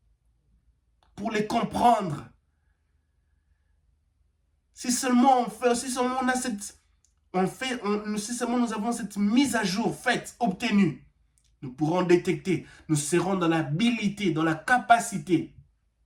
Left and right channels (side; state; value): both; identical; correlation 1.00